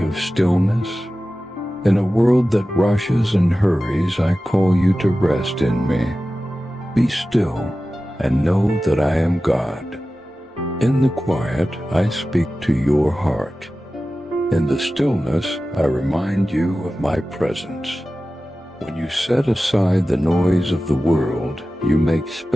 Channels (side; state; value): both; normal; correlation 0.95